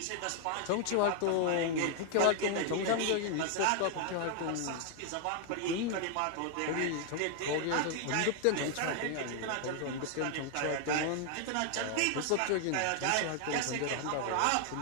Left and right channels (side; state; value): both; different; correlation 0.00